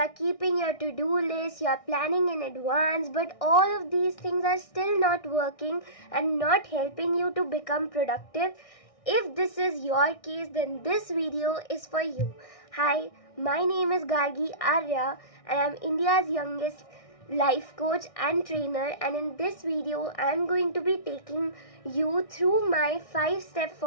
keeping your to-do list, you are planning in advance, but all of these things are still not working and not helping you to become productive. If this is your case, then this video is for you. Hi, my name is Gargi Arya and I am India's youngest life coach and trainer, and in this video I am going to be taking you through my 5-step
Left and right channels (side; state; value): right; late; 1.6 ms